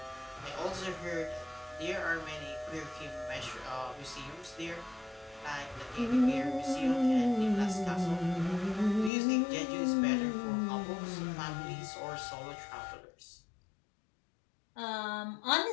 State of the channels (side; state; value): right; drops out; at 9.1 s